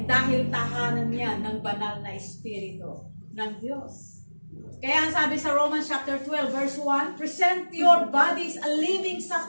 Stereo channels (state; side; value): inverted; both; correlation -1.00